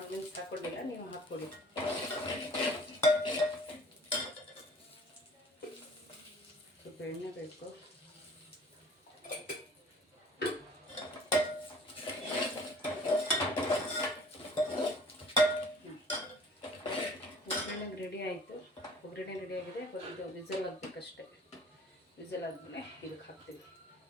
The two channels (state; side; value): normal; both; correlation 0.50